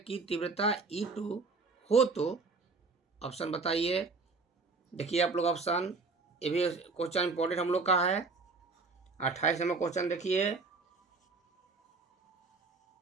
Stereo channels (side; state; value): left; quieter; 4.1 dB